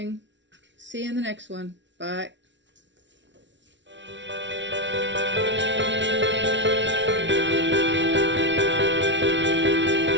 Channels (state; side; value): late; left; 0.53 ms